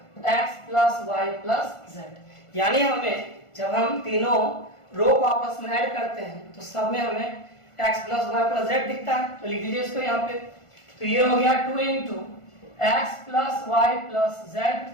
x plus y plus z. यानी हमें जब हम तीनों रो को आपस में ऐड करते हैं तो सब में हमें x plus y plus z दिखता है। तो लिख दीजिए इसको यहाँ पे। तो ये हो गया 2 into x plus y plus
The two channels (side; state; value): right; late; 1.4 ms